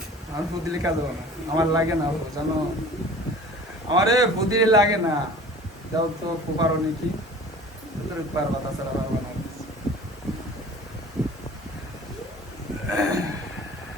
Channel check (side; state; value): both; normal; correlation 0.44